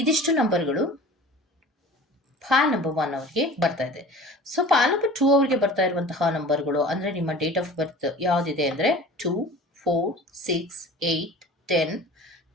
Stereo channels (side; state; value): both; normal; correlation 0.41